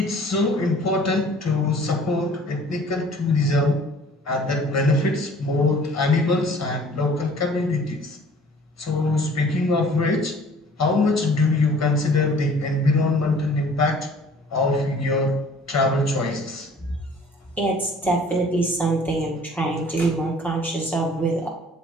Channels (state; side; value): normal; both; correlation 0.52